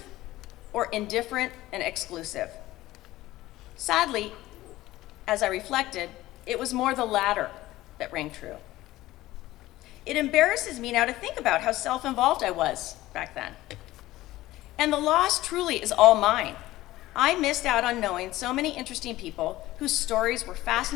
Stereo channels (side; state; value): right; quieter; 16.7 dB